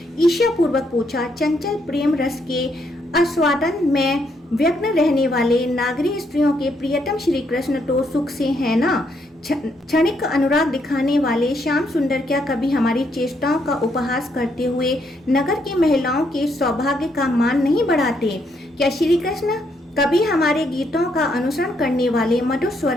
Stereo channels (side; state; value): both; normal; correlation 0.75